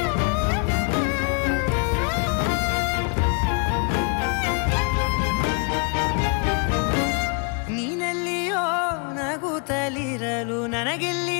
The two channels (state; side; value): quieter; right; 37.7 dB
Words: ನೀನೆಲ್ಲಿಯೋ ನಗುತ್ತಲಿರಲು ನನಗಿಲ್ಲಿ